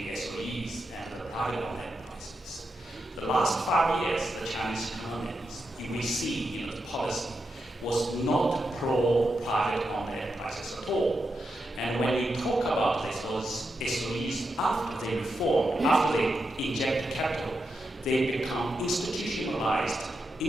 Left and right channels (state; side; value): normal; both; correlation 0.86